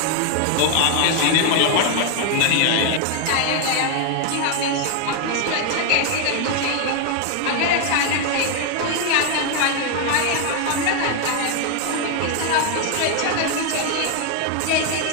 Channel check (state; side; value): different; both; correlation 0.01